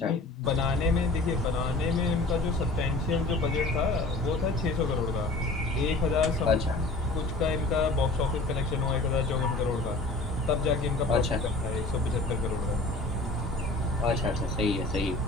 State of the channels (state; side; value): quieter; right; 3.0 dB